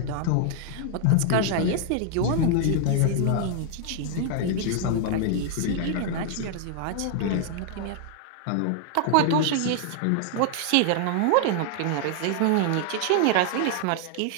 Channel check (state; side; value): different; both; correlation 0.00